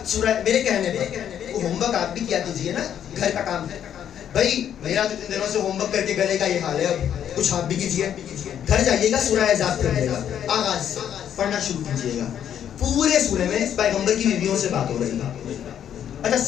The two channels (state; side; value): quieter; right; 9.5 dB